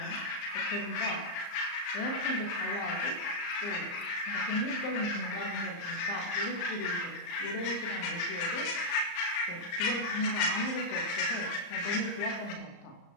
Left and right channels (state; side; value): late; right; 34 ms